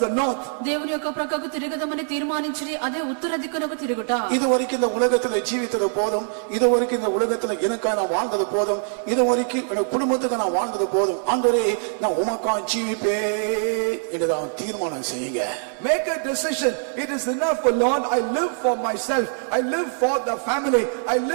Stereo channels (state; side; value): silent; left; digital silence